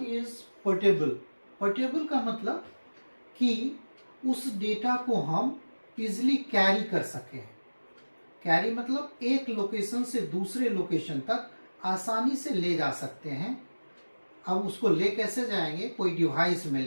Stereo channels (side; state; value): both; inverted; correlation -1.00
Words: portable. Portable का मतलब कि उस डेटा को हम इजिली कैरी कर सकें। कैरी मतलब एक लोकेशन से दूसरे लोकेशन तक आसानी से ले जा सकते हैं। अब उसको ले कैसे जाएंगे? कोई डिवाइस में